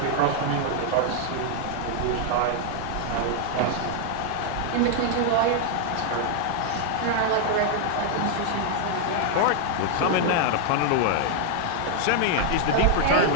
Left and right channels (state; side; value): different; both; correlation 0.00